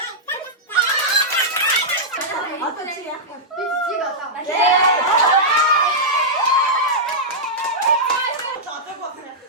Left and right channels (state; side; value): normal; both; correlation -0.10